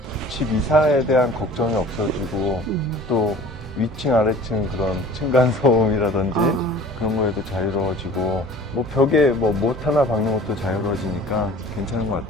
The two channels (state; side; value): normal; both; correlation 0.44